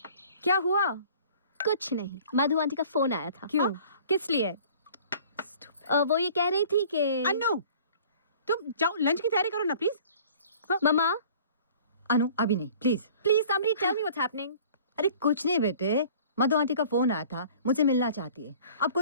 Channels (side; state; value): both; inverted; correlation -0.49